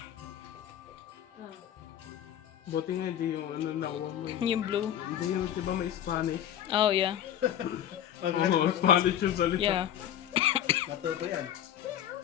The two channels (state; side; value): quieter; right; 10.8 dB